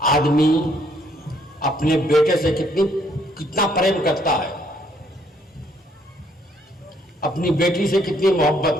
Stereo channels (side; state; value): both; normal; correlation 0.67